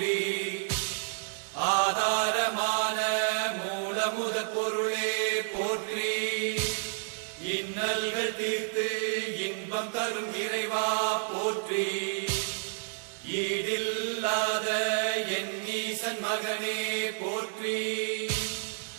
ஆதாரமான மூலமுத பொருளே போற்றி, இன்னல்கள் தீர்த்து இன்பம் தரும் இறைவா போற்றி, ஈடில்லாத என் ஈசன் மகனே போற்றி,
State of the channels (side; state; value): left; silent; digital silence